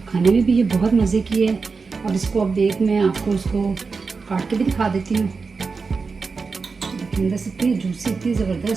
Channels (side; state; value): left; quieter; 4.7 dB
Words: खाने में भी ये बहुत मज़े की है। अब इसको अब मैं आपको उसको काट के भी दिखा देती हूँ। देखिए अंदर से इतनी जूसी, इतनी